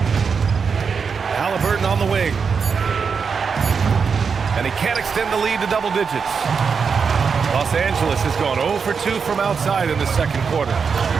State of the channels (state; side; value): quieter; left; 5.8 dB